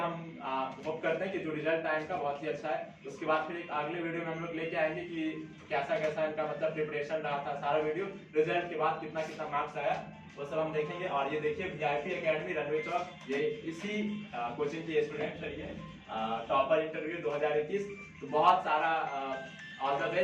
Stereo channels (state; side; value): identical; both; correlation 1.00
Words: होप करते हैं कि जो रिजल्ट आया इनका बहुत ही अच्छा है। उसके बाद फिर एक अगले वीडियो में हम लोग लेके आएंगे कि कैसा कैसा इनका मतलब प्रिपरेशन रहा था, सारा वीडियो रिजल्ट के बाद कितना कितना मार्क्स आया वो सब हम देखेंगे। और ये देखिए VIP एकेडमी रनवे चौक, ये इसी कोचिंग की स्टूडेंट है, ये टॉपर इंटरव्यू 2021। तो बहुत सारा ऑल द